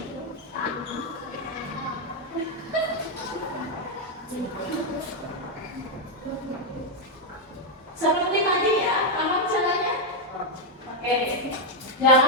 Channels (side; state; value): both; normal; correlation 0.01